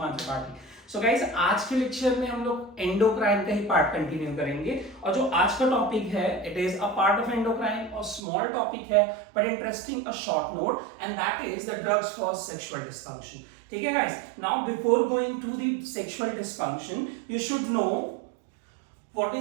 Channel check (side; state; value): left; drops out; at 8.2 s